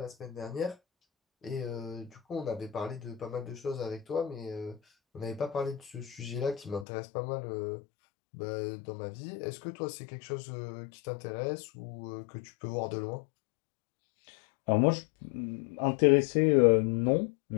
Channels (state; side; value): drops out; right; at 6.9 s